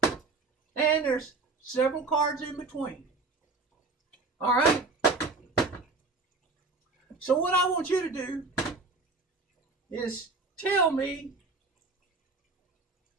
And there's several cards in between. All right? So what I want you to do is tell me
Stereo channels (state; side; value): quieter; left; 3.7 dB